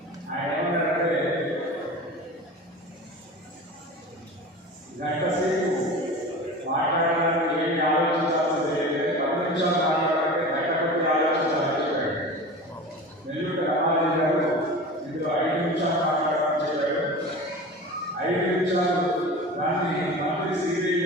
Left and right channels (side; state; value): both; normal; correlation 0.34